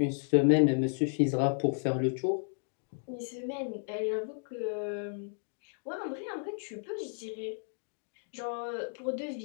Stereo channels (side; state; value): right; silent; digital silence